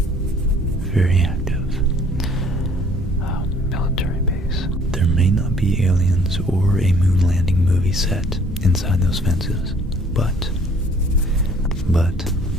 very active military base. There may not be aliens or a moon landing movie set inside those fences, but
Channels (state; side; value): normal; both; correlation 0.58